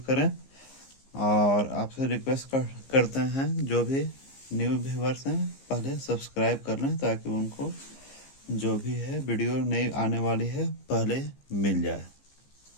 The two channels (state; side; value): late; right; 15 ms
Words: करें और आपसे रिक्वेस्ट करते हैं जो भी न्यू व्यूवर्स हैं पहले सब्सक्राइब कर लें ताकि उनको जो भी है वीडियो नई आने वाली है पहले मिल जाए।